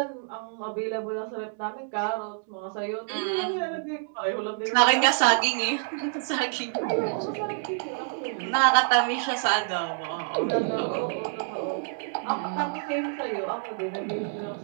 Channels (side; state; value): left; silent; digital silence